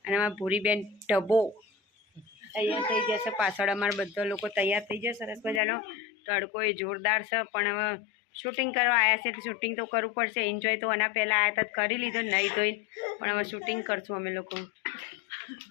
અને અમારા ભૂરીબેન ઢબો તૈયાર થઈ જશે. પાછળ અમારા બધા લોકો તૈયાર થઈ જશે. સરસ મજાનો તડકો એ જોરદાર છે, પણ હવે શૂટિંગ કરવા આવ્યા છે તો શૂટિંગ તો કરવું પડશે. એન્જોય તો આના પહેલાં આવ્યા હતા કરી લીધો, નહીં ધોઈને, પણ હવે શૂટિંગ કરશું અમે લોકો.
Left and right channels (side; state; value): right; drops out; at 5.6 s